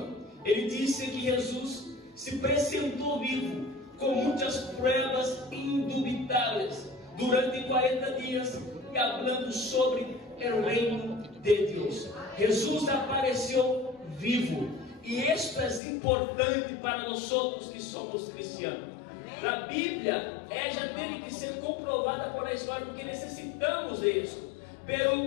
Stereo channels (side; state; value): right; drops out; at 15.8 s